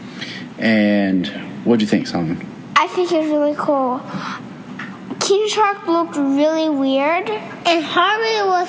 And what'd you think, Solomon? I think it's really cool. King Shark looked really weird. And Harley was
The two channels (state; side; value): identical; both; correlation 1.00